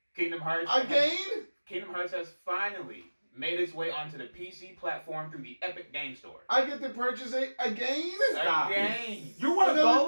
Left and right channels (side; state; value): both; inverted; correlation -1.00